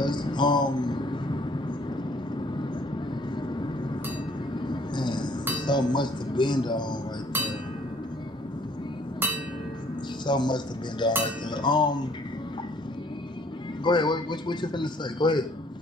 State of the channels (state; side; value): normal; both; correlation 0.60